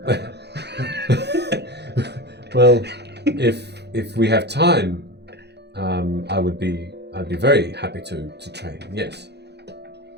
Well, if we have time, I'd be very happy to train. Yes.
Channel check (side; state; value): left; late; 0.49 ms